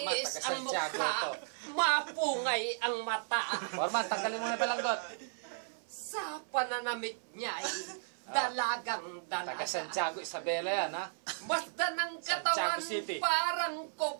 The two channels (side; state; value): left; silent; 55 dB below the other